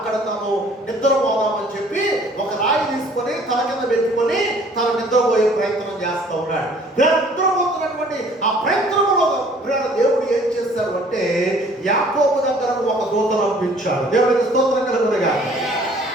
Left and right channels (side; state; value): both; normal; correlation 0.55